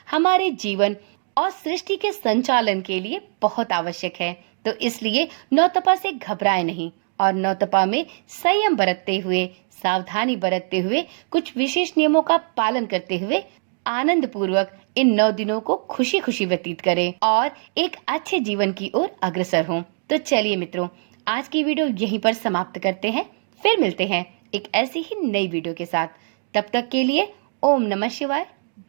हमारे जीवन और सृष्टि के संचालन के लिए बहुत आवश्यक है। तो इसलिए नौतपा से घबराएं नहीं और नौतपा में संयम बरतते हुए, सावधानी बरतते हुए, कुछ विशेष नियमों का पालन करते हुए आनंद पूर्वक इन 9 दिनों को खुशी खुशी व्यतीत करें और एक अच्छे जीवन की ओर अग्रसर हों। तो चलिए मित्रों, आज की वीडियो यहीं पर समाप्त करते हैं। फिर मिलते हैं एक ऐसी ही नई वीडियो के साथ। तब तक के लिए ओम नमः शिवाय,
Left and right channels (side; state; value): left; silent; 64 dB below the other